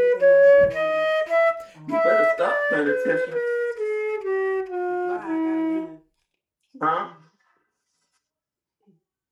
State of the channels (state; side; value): identical; both; correlation 1.00